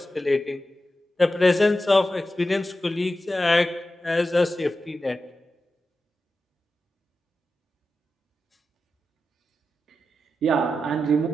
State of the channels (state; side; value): normal; both; correlation 0.91